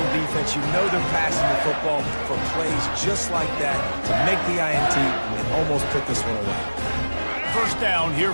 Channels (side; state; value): both; inverted; correlation -1.00